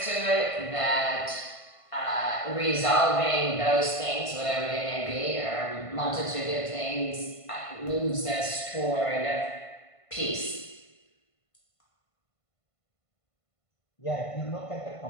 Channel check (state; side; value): late; right; 1.5 ms